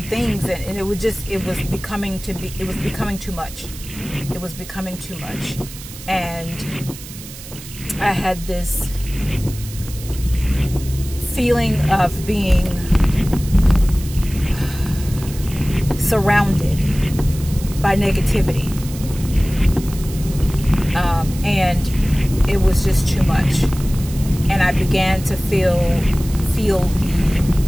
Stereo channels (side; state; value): right; noise; hiss, 15 dB below the sound